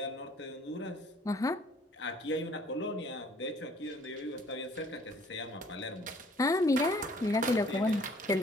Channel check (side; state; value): both; normal; correlation 0.58